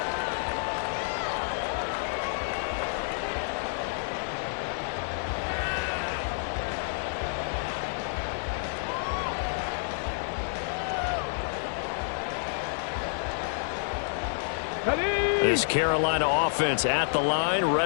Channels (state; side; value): silent; right; digital silence